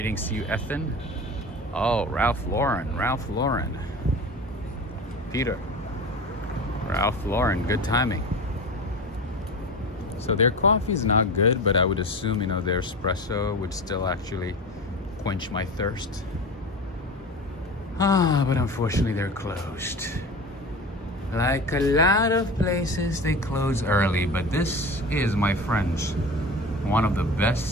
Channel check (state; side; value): normal; both; correlation 0.31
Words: to you, Ethan. Oh, Ralph Lauren. Peter. Ralph Lauren, good timing. So their coffee's not good, but I would assume, you know, their espresso would still actually quench my thirst. But unfortunately they're closed. Like a lot of places, they close early, but this is, my friends, one of the